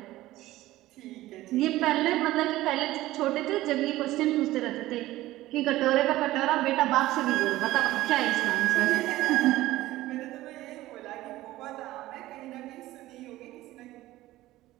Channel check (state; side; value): quieter; left; 16.5 dB